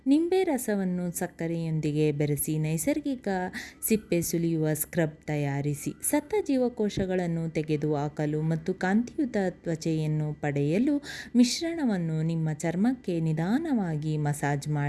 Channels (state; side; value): identical; both; correlation 1.00